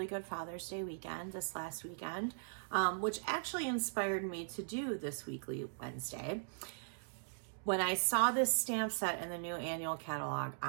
good Father's Day weekend this last weekend, which actually inspired me to do this Weekly Wednesday. When I saw this stamp set in the new annual catalog,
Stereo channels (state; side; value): silent; left; digital silence